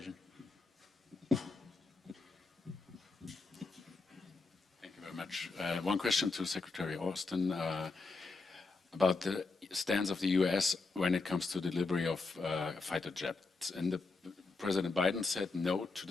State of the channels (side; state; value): right; quieter; 4.0 dB